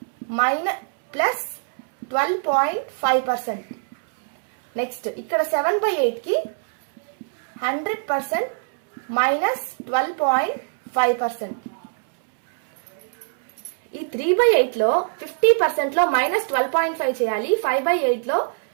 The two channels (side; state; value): left; silent; 63 dB below the other